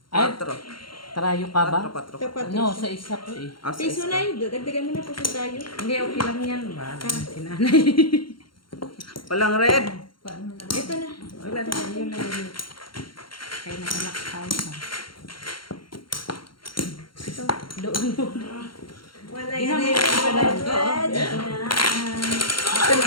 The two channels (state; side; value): late; right; 0.73 ms